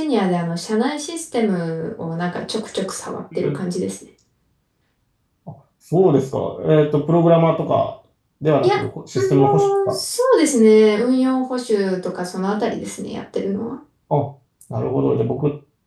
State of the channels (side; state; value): both; identical; correlation 1.00